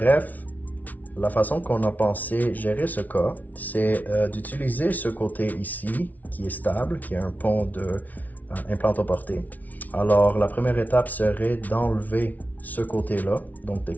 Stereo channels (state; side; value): late; right; 0.076 ms